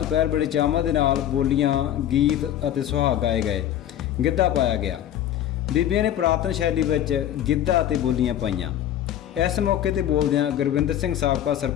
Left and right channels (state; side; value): quieter; right; 11.3 dB